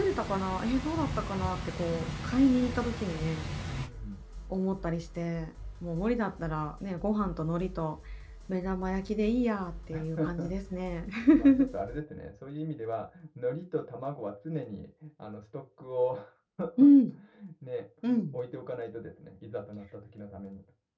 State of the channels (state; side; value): identical; both; correlation 1.00